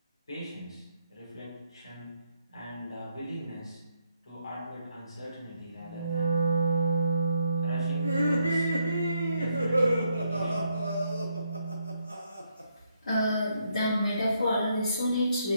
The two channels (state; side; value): inverted; both; correlation -0.76